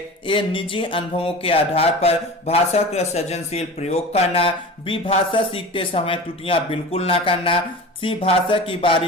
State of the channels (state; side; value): normal; both; correlation 0.34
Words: ए निजी अनुभवों के आधार पर भाषा का सृजनशील प्रयोग करना, बी भाषा सीखते समय त्रुटियां बिल्कुल ना करना, सी भाषा की